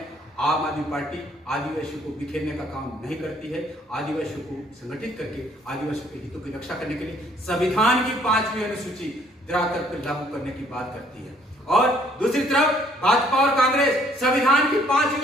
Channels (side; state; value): both; normal; correlation 0.62